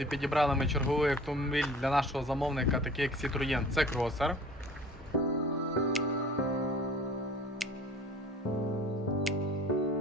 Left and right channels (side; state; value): both; normal; correlation 0.46